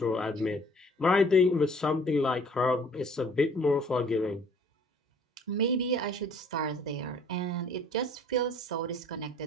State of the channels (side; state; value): both; normal; correlation 0.55